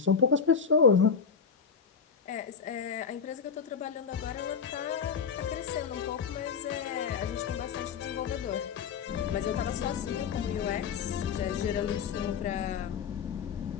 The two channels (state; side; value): quieter; right; 6.4 dB